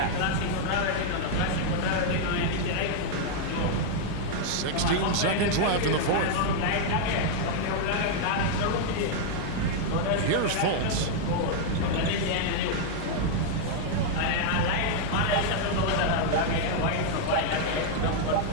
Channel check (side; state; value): both; different; correlation -0.01